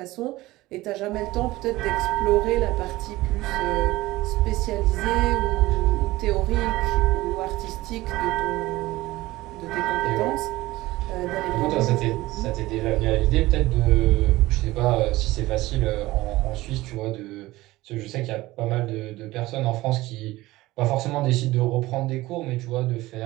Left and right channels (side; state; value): left; quieter; 18.4 dB